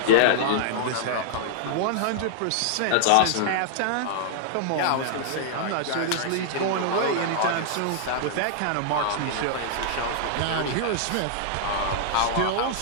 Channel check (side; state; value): both; different; correlation -0.01